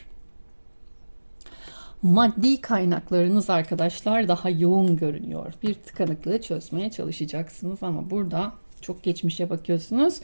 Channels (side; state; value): both; inverted; correlation -1.00